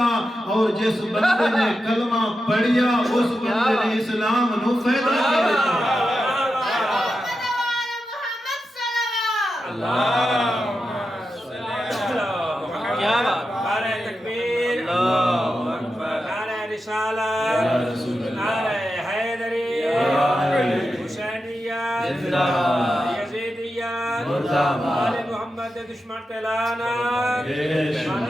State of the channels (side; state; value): both; normal; correlation 0.89